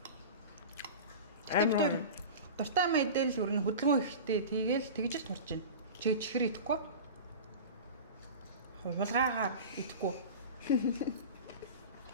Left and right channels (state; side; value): inverted; both; correlation -0.31